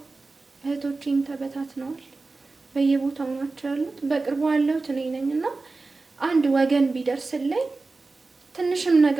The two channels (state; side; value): quieter; left; 3.6 dB